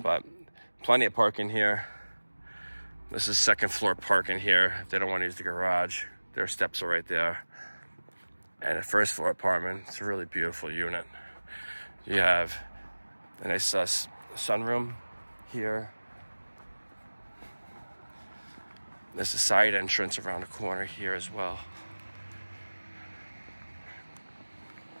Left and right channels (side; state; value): both; inverted; correlation -1.00